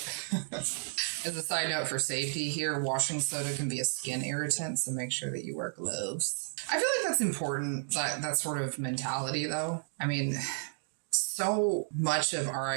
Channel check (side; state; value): left; silent; digital silence